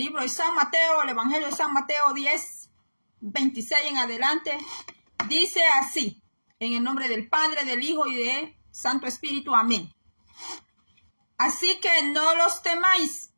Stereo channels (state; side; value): inverted; both; correlation -1.00